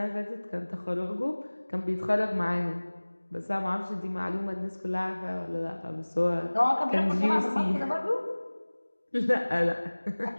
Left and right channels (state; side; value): inverted; both; correlation -1.00